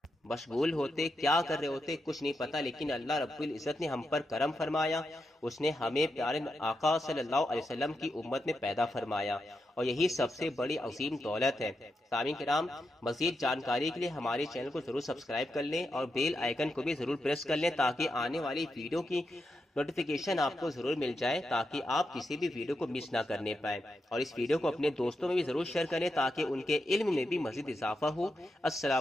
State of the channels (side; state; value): both; normal; correlation 0.86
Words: مشغول ہوتے، کیا کر رہے ہوتے، کچھ نہیں پتا۔ لیکن اللہ رب العزت نے ہم پر کرم فرمایا، اس نے ہمیں پیارے آقا صلی اللہ علیہ وسلم کی امت میں پیدا فرمایا، اور یہی سب سے بڑی عظیم دولت ہے۔ سامعین کرام، مزید جانکاری کے لیے ہمارے چینل کو ضرور سبسکرائب کر لیں اور بیل آئیکن کو بھی ضرور پریس کر لیں، تاکہ آنے والی ویڈیو کی نوٹیفیکیشن آپ کو ضرور مل جائے، تاکہ آپ کسی بھی ویڈیو کو مس نہ کرنے پائیں، اور اس ویڈیو کو اپنے دوستوں میں بھی ضرور شیئر کریں تاکہ ان کے علم میں بھی مزید اضافہ ہو۔